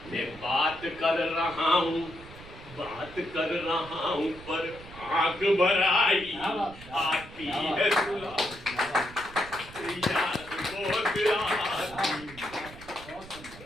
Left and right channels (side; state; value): right; noise; rumble, 17 dB below the sound